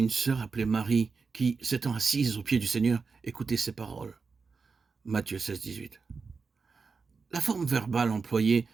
sœur appelée Marie qui, s'étant assise aux pieds du Seigneur, écoutait ses paroles. Matthieu 16, 18. La forme verbale employée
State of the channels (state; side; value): quieter; left; 4.8 dB